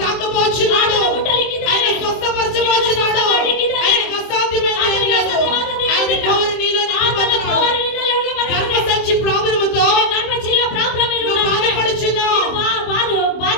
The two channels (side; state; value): right; late; 23 ms